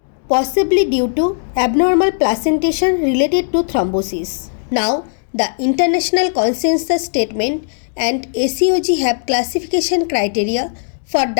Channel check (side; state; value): right; silent; digital silence